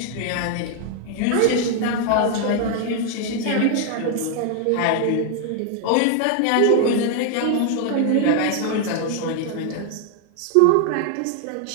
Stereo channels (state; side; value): different; both; correlation 0.00